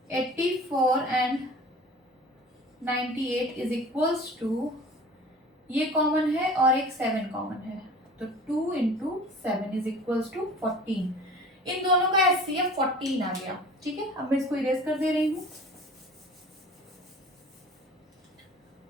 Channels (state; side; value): normal; both; correlation 0.43